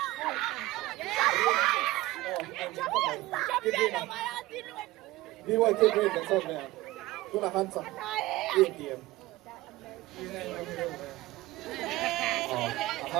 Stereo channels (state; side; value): quieter; left; 18.2 dB